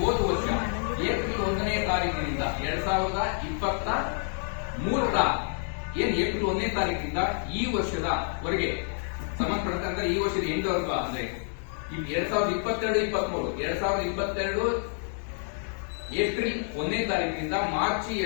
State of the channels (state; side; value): silent; right; 57 dB below the other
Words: ಹೋದ ವರ್ಷ ಏಪ್ರಿಲ್ 1ನೇ ತಾರೀಕಿನಿಂದ 2023ರ ಏಪ್ರಿಲ್ 1ನೇ ತಾರೀಕಿನಿಂದ ಈ ವರ್ಷದವರೆಗೆ ಸಂಬಂಧಪಟ್ಟಂತೆ ಅಂದ್ರೆ ಈ ವರ್ಷದ ಎಂಡ್ವರೆಗೂ ಅಂದ್ರೆ 2022 ಏಪ್ರಿಲ್ 1ನೇ ತಾರೀಕಿನಿಂದ ಮಾರ್ಚ್